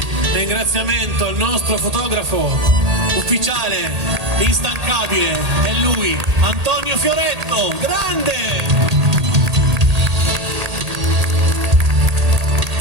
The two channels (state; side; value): late; left; 1.8 ms